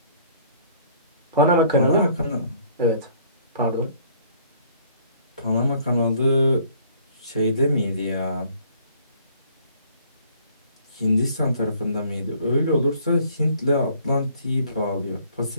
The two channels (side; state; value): both; inverted; correlation -0.59